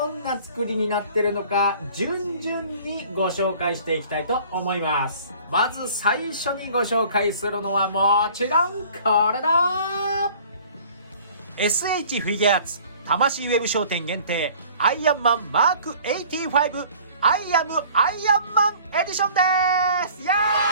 んな作りになってるのか順々にご紹介していきたいと思います。まず最初にご紹介するのはもちろんこれだ。 SH フィギュアーツ魂ウェブ商店限定アイアンマンマーク85アイアムアイアンマンエディションです。イエー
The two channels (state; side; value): inverted; both; correlation -0.50